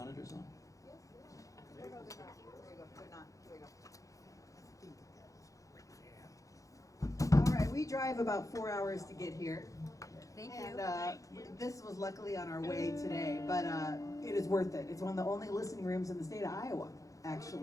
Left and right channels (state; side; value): late; right; 0.16 ms